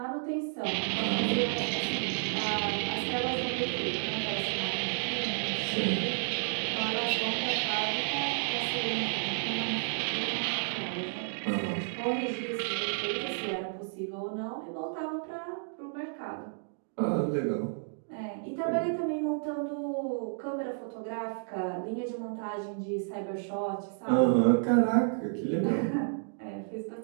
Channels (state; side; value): silent; left; digital silence